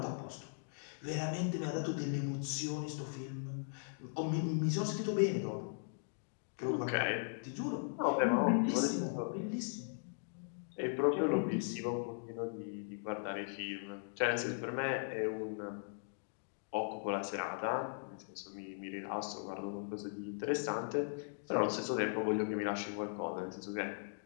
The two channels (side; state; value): right; silent; digital silence